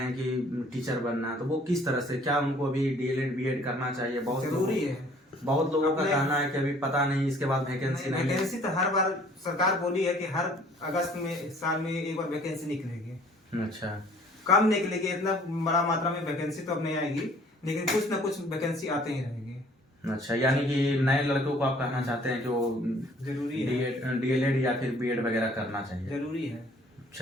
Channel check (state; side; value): normal; both; correlation 0.56